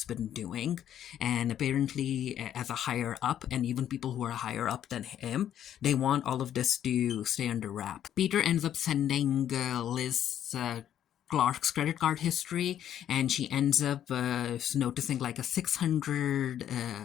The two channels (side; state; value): right; quieter; 10.5 dB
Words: been doing, and apparently, as a higher up, and even people who are higher up than him, they want all of this to stay under wrap. Peter ends up sending Liz. Clark's credit card history, and she ends up noticing like a